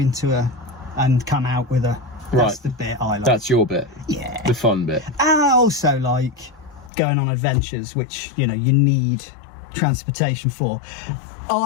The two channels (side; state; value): right; drops out; at 6.9 s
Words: and come out with a. That's the bit I like. That's your bit. Yeah. The fun bit. And I also like going on adventures, which, you know, you need transportation for.